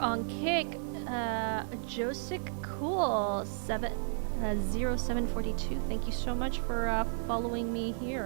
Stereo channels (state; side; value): silent; left; digital silence